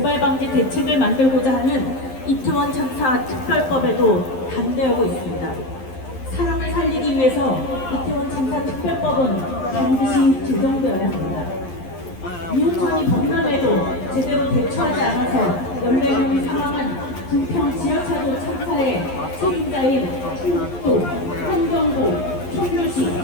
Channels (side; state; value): right; late; 11 ms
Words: 방지 대책을 만들고자 하는 이태원 참사 특별법에도 반대하고 있습니다. 사람을 살리기 위해서 이태원 참사 특별법은 반드시 제정되어야 합니다. 이웃촌이 범람에도 제대로 대처하지 않아서 14명이 사망한 부평 지하차도 참사의 책임자인 충북도, 환경부, 청주시,